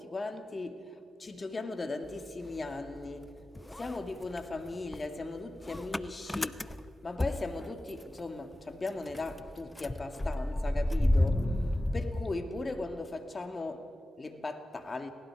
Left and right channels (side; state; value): both; normal; correlation 0.95